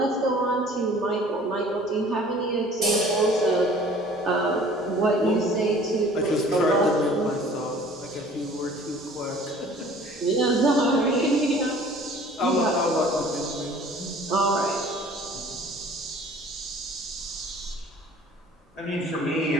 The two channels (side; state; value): both; normal; correlation 0.50